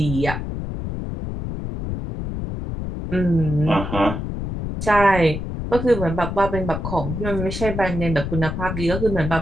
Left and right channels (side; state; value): left; noise; rumble, 5 dB below the sound